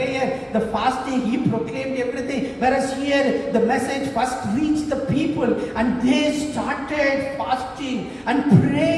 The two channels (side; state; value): both; identical; correlation 1.00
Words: the fasting, he proclaimed everything. Whereas here, the message first reached the people, and they started fasting and